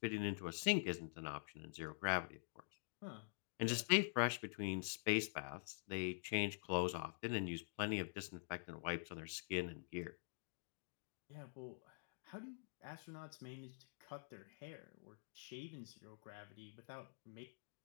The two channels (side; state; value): right; silent; digital silence